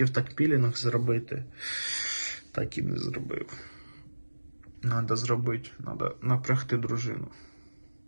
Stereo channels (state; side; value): inverted; both; correlation -1.00